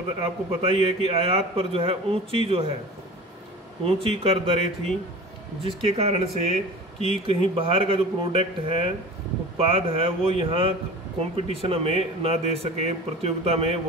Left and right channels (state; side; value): normal; both; correlation 0.37